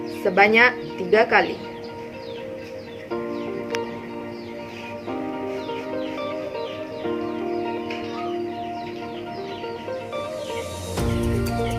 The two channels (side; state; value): both; identical; correlation 1.00